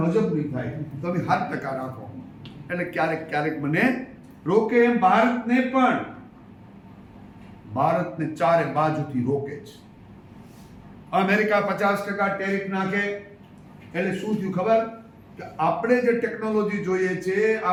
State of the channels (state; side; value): identical; both; correlation 1.00